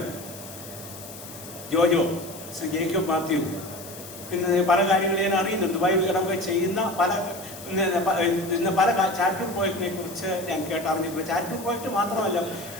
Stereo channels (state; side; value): noise; left; hiss, 15 dB below the sound